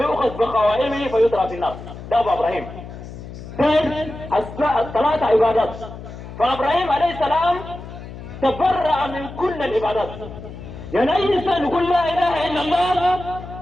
بقوائمه فيطرح في النار. ده أبو إبراهيم. الثلاثة عبادات. فإبراهيم عليه السلام تبرأ من كل العبادات. يعني أي إنسان يقول لا إله إلا الله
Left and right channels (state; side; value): noise; left; hum, 13 dB below the sound